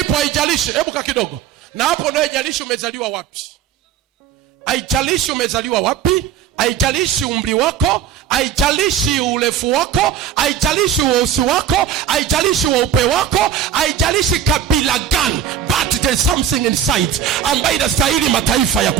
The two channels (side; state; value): left; quieter; 8.6 dB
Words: haijalishi, hebu ka kidogo. Na hapo ndio haijalishi umezaliwa wapi. Haijalishi umezaliwa wapi, haijalishi umri wako, haijalishi urefu wako, haijalishi weusi wako, haijalishi weupe wako, haijalishi kabila gani, but there's something inside ambayo inastahili mataifa ya